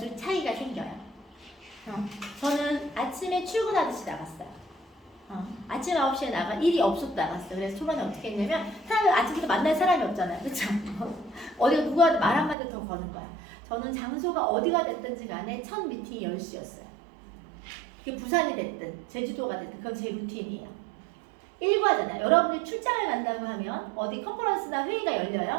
차이가 생겨요. 저는 아침에 출근하듯이 나갔어요. 아침 9시에 나가 일이 없어도 나갔어요. 그래서 초반에 어떻게 했냐면 사람을 아침부터 만날 사람이 없잖아요. 그렇죠? 어디가 누가 말 한마디 더 거는 거야. 저는 장소가 어디가 됐든지 간에 첫 미팅이 10시였어요. 그게 부산이 됐든 제주도가 됐든 그건 제 루틴이에요. 일과잖아요. 여러분이 출장을 간다고 하면 어디 컨퍼런스나 회의가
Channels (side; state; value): left; drops out; at 12.6 s